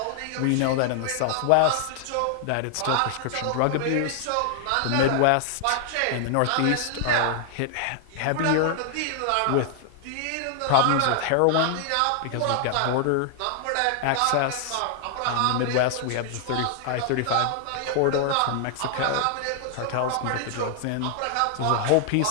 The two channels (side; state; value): both; different; correlation 0.00